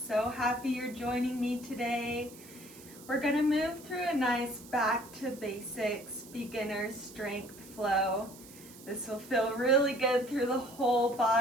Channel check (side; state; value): right; noise; hiss, 19 dB below the sound